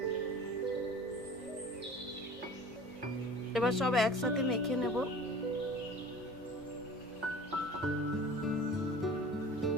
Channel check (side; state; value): both; normal; correlation 0.42